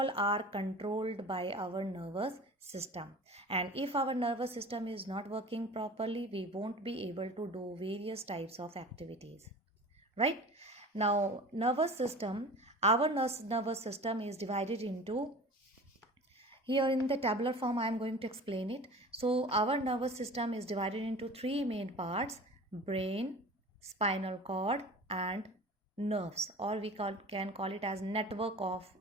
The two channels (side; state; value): both; normal; correlation 0.39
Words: are controlled by our nervous system. And if our nervous system is not working properly, we won't be able to do various types of activities, right? Now nervous system, our nervous system is divided into, here in the tabular form I am going to explain it. So our nervous system is divided into 3 main parts: brain, spinal cord, and nerves, or we can call it as network of